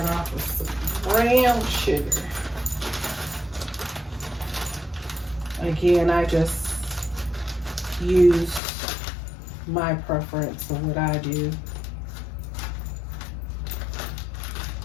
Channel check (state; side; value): drops out; right; at 8.6 s